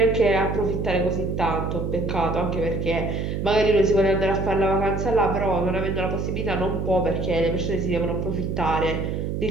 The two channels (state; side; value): noise; right; hum, 2 dB below the sound